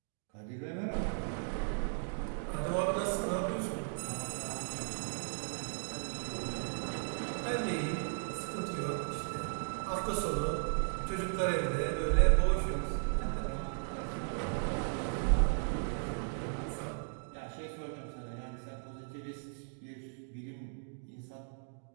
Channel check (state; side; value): silent; left; digital silence